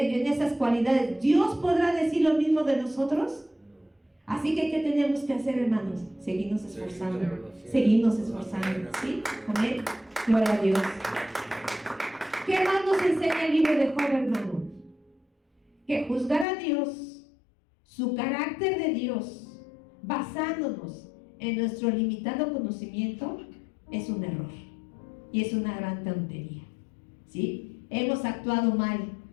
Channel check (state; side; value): drops out; right; at 16.4 s